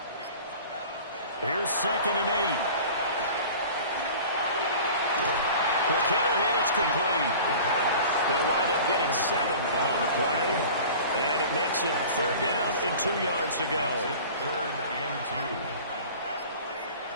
Here's 2nd and 8. Quick hitter here, it's complete. They'll wind up getting 7 on the play, and it makes it 3rd down and 2 yards to go. 3rd and 2.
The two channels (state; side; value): inverted; both; correlation -0.41